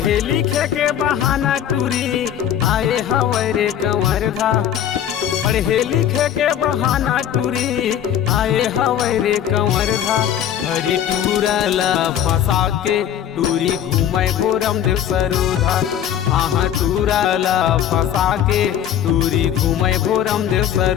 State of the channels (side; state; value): right; quieter; 10.1 dB